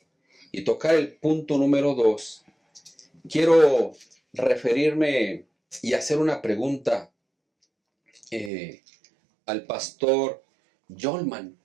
y tocar el punto número 2, quiero referirme y hacer una pregunta al pastor Jolman.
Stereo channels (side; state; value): left; drops out; at 8.5 s